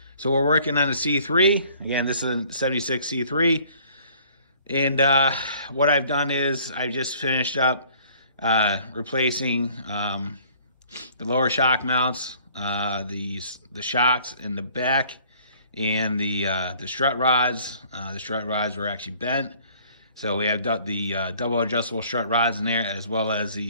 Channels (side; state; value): both; inverted; correlation -0.56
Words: So we're working on the C3. Again, this is a 76 C3. And what I've done is I just finished up replacing the lower shock mounts, the shocks in the back, and the strut rods. The strut rods were actually bent, so we have the double adjustable strut rods in there, as well as